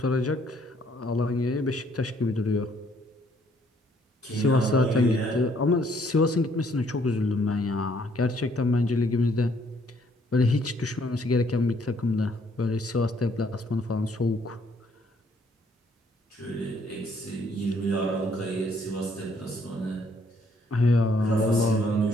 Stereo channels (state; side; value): normal; both; correlation 0.66